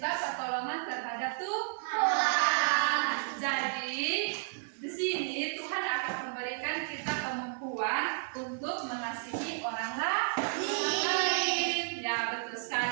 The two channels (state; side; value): silent; left; digital silence